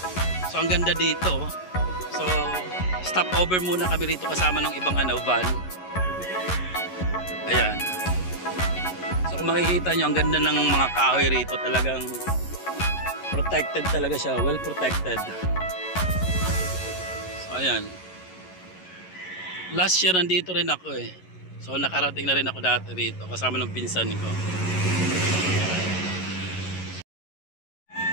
So ang ganda dito. So stop over muna kami rito kasama ng ibang van. Ayan. So kung makikita nyo, ang ganda ng mga kahoy rito. Talagang protected talaga siya. Well protected. So ayan. Last year nandito rin ako eh. So nakarating na rin ako dati rito kasama ng pinsan ko.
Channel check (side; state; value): right; late; 11 ms